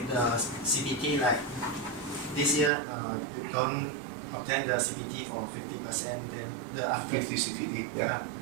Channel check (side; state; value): left; drops out; at 2.7 s